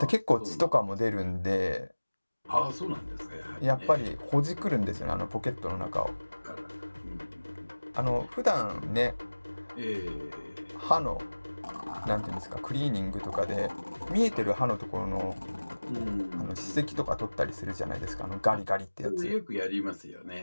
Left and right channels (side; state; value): both; inverted; correlation -1.00